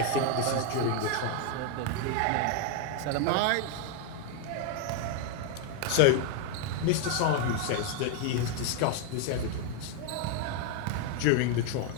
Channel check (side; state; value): both; different; correlation 0.01